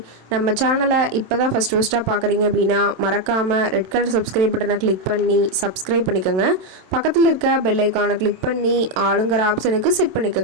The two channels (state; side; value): late; left; 27 ms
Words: நம்ம சேனலை இப்போ தான் ஃபஸ்ட்டாக பார்க்குறீங்க அப்படின்னா மறக்காமல் ரெட் கலர் சப்ஸ்கிரைப் பட்டனை கிளிக் பண்ணி சப்ஸ்கிரைப் பண்ணிக்கோங்க. பக்கத்தில் இருக்க பெல் ஐக்கானை கிளிக் பண்ணி ஆளுங்கிற ஆப்ஷனுக்கு செட்